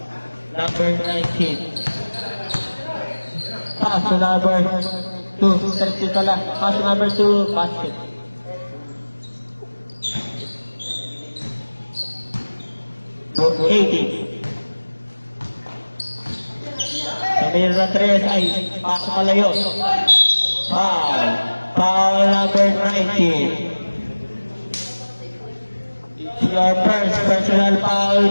Number 19. Pass to number 2. 30 pala. Pass to number 2. Basket. To 80. Samir na 3 ay pasok kalayo. Foul. Foul number 19. Your first personal foul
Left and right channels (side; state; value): both; inverted; correlation -1.00